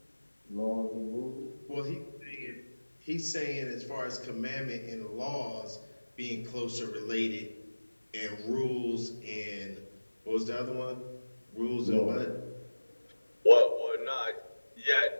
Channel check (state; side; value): inverted; both; correlation -1.00